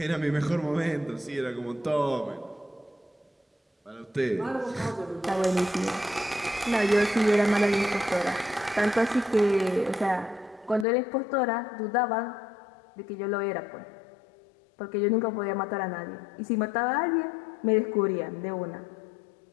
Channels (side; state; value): right; drops out; at 10.9 s